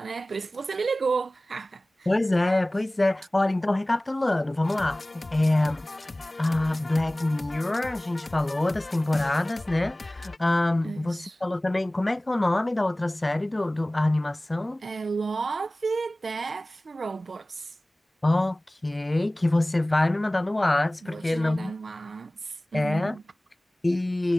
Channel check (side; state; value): both; normal; correlation 0.98